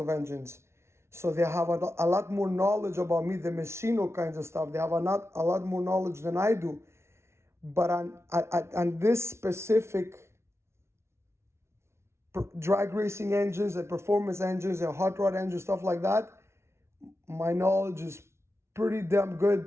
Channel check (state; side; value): late; left; 0.13 ms